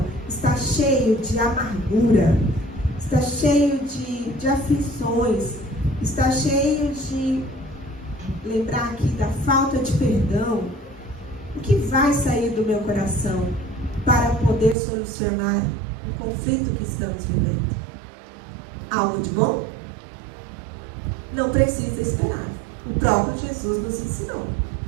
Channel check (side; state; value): left; drops out; at 14.8 s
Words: está cheio de amargura, está cheio de aflições, está cheio de, lembrar aqui da falta de perdão, o que vai sair do meu coração para poder solucionar um conflito que estamos vivendo? Algo de bom? Não precisa esperar. O próprio Jesus nos ensinou.